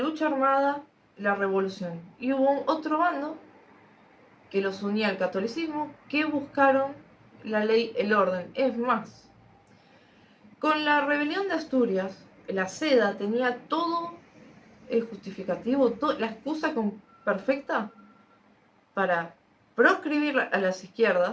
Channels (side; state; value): both; identical; correlation 1.00